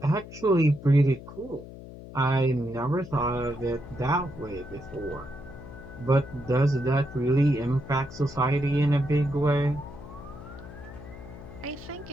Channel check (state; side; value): noise; left; hum, 15 dB below the sound